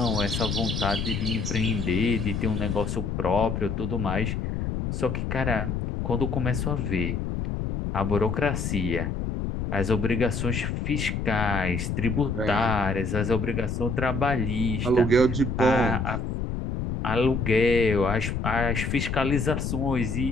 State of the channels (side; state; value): left; noise; rumble, 2 dB below the sound